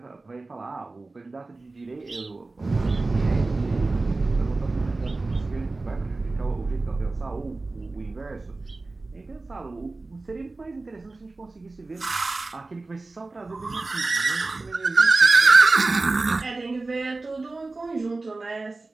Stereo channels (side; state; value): left; quieter; 3.4 dB